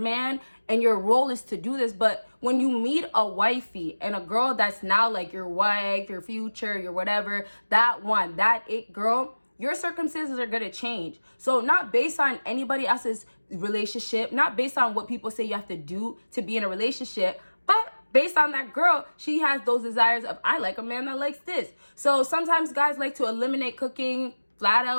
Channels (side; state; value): both; inverted; correlation -1.00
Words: and your role is to do this, but when you meet a wifey and a girl that's now like your wife, your future, your whatever, that it girl, your circumstances are gonna change. So not based on anybody else's relationship, not based on what people say you have to do to be in a relationship, but based on that girl, she has those desires of, I like a man that likes this. So sometimes guys like to eliminate cooking flat